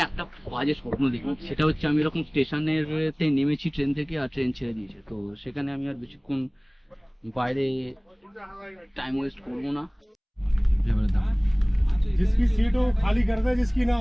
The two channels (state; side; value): identical; both; correlation 1.00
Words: একটা বাজে স্বপ্ন দেখি, সেটা হচ্ছে আমি এরকম স্টেশনের নেমেছি ট্রেন থেকে, আর ট্রেন ছেড়ে দিয়েছে। তো সেখানে আমি আর বেশিক্ষণ বাইরে টাইম ওয়েস্ট করবো না। जिसकी सीट हो खाली कर दे, जिसकी ना